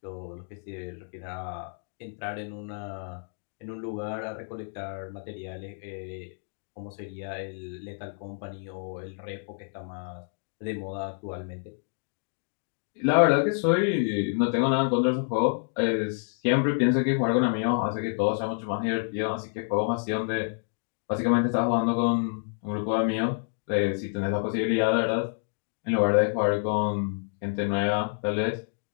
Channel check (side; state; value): right; silent; digital silence